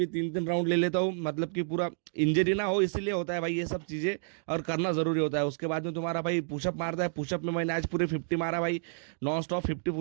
3 राउंड ले लेता हूँ, मतलब कि पूरा इंजरी ना हो इसीलिए होता है भाई ये सब चीज़ें, और करना ज़रूरी होता है। उसके बाद में तुम्हारा भाई पुशअप मारता है। पुशअप में मैंने आज पूरे 50 मारा भाई, नॉन स्टॉप 50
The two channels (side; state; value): left; silent; digital silence